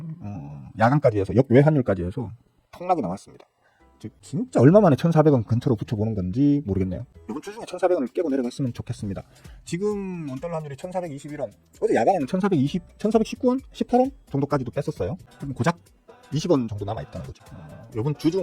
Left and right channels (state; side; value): identical; both; correlation 1.00